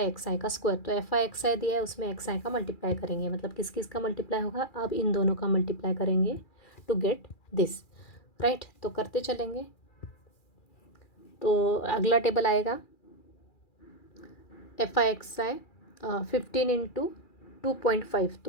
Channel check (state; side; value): late; right; 2.4 ms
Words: XI का स्क्वायर। तो FI XI दिया है, उसमें XI का मल्टीप्लाई करेंगे, मतलब किस किस का मल्टीप्लाई होगा, अब इन दोनों का मल्टीप्लाई करेंगे टू गेट दिस। राइट, तो करते चलेंगे। तो अगला टेबल आएगा FI XI 15 इंटू 2.5,